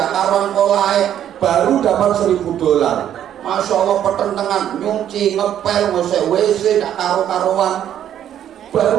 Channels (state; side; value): quieter; left; 10.4 dB